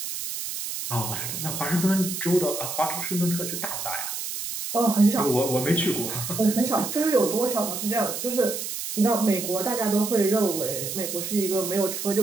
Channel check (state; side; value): noise; right; hiss, 5 dB below the sound